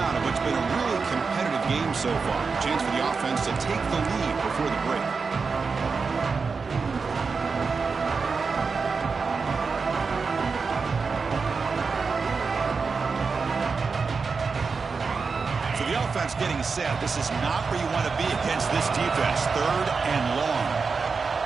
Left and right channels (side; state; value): left; quieter; 4.9 dB